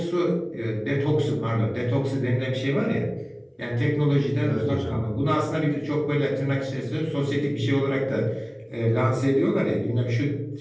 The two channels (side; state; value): both; identical; correlation 1.00